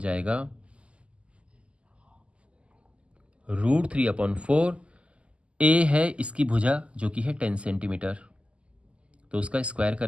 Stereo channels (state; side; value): late; left; 0.056 ms